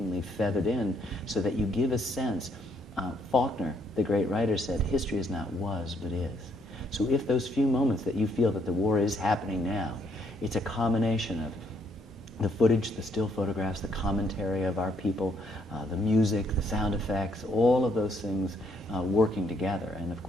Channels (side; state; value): both; normal; correlation 0.70